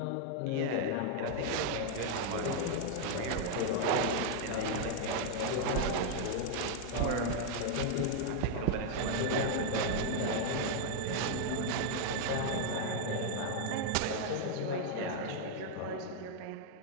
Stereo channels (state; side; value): different; both; correlation 0.00